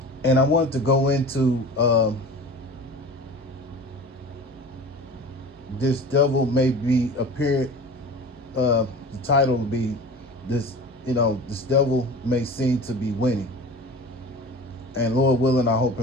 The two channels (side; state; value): both; normal; correlation 0.37